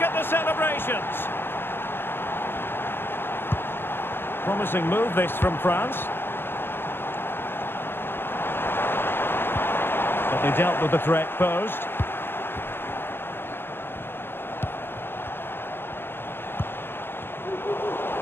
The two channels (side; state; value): right; late; 0.10 ms